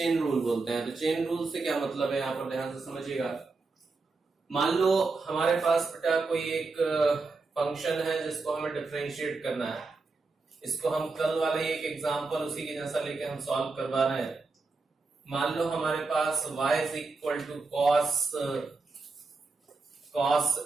रूल बोलते हैं। तो चेन रूल से क्या मतलब है, यहां पर ध्यान से समझिएगा। मान लो हमारे पास बेटा कोई एक फंक्शन है जिसको हमें डिफरेंशिएट करना है। इसको हम कल वाले एक एग्जांपल उसी के जैसा लेके हम सॉल्व करवा रहे हैं। मान लो हमारे पास y is equal to cos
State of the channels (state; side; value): quieter; left; 3.9 dB